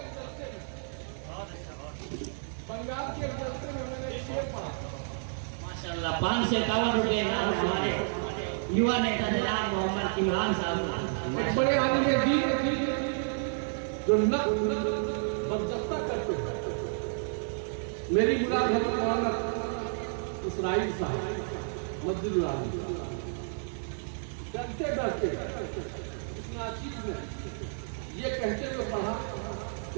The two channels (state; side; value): silent; left; digital silence